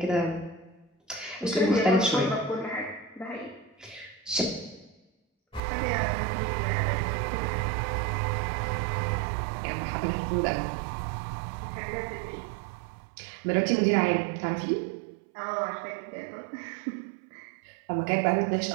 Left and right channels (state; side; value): drops out; left; at 5.6 s